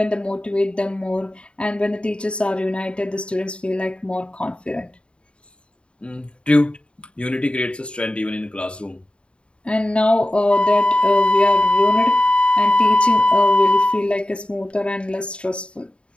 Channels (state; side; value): late; right; 0.056 ms